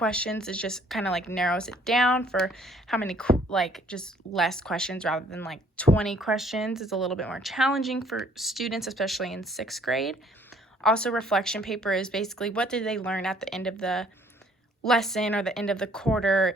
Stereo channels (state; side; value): normal; both; correlation 0.60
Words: is just kind of like narrows it down for how many, just less questions rather than like 20 questions. It's a little bit more challenging for students, especially in 6th grade. Also, reflection paper is basically what did they learn at the end of the lesson or the end of the quarter,